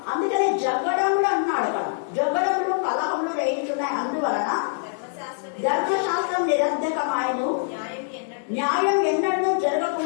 అందుకనే జగడములు అన్నాడు అక్కడ. జగడములు కలహములు రేగుతున్నాయి. అందువలన ధర్మశాస్త్రం నిరర్ధకమాయను, న్యాయం ఎన్నడూ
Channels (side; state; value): right; silent; digital silence